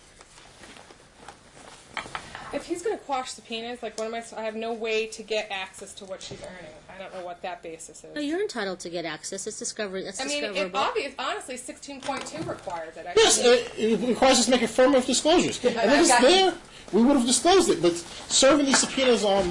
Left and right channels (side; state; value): both; identical; correlation 1.00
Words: If he's going to quash subpoenas, like what am I have no way to get access to what she's earning. I don't know what that basis is. No, you're entitled to get access. It's discovery. That's I mean, discoverable. honestly, 16.2 requires it. Yes, it requires us to make affirmative disclosures. And if it's there, we would have disclosed it. But serving these subpoenas on